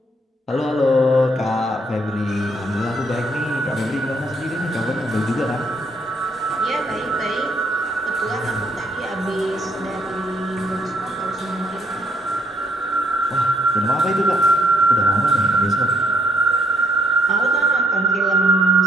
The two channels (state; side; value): normal; both; correlation 0.70